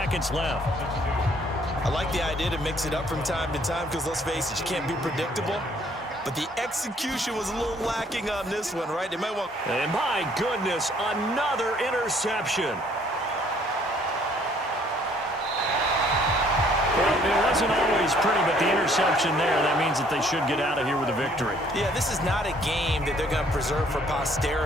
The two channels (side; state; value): both; normal; correlation 0.62